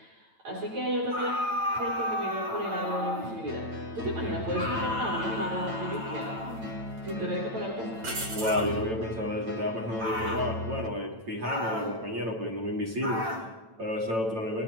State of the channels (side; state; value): left; late; 8.9 ms